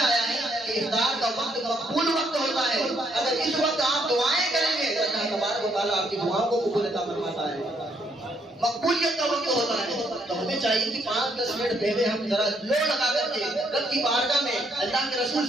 ہے کہ افطار کا وقت مقبول وقت ہوتا ہے، اگر اس وقت آپ دعائیں کریں گے تو اللہ تبارک و تعالیٰ آپ کی دعاؤں کو قبول عطا فرماتا ہے، مقبولیت کا وقت ہوتا ہے۔ تو ہمیں چاہیے کہ 5-10 منٹ پہلے ہم ذرا لو لگا کر کے رب کی بارگاہ میں اللہ کے رسول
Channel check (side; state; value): both; normal; correlation 0.72